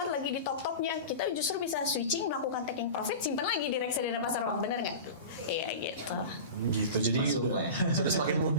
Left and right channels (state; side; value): inverted; both; correlation -0.31